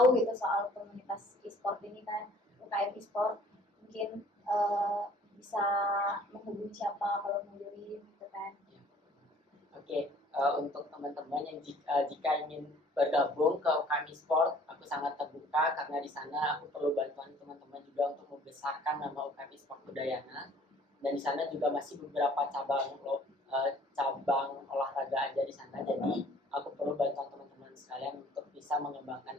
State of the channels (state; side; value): normal; both; correlation 0.54